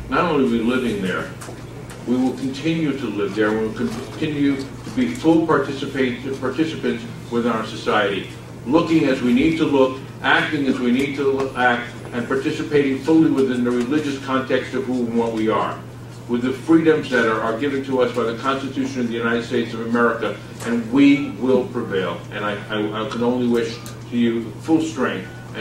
Not only are we living there, we will continue to live there. We will continue to be full participants within our society, looking as we need to look, acting as we need to act, and participating fully within the religious context of who and what we are, with the freedoms that are given to us by the Constitution of the United States of America, and we will prevail. And I can only wish to you full strength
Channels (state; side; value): identical; both; correlation 1.00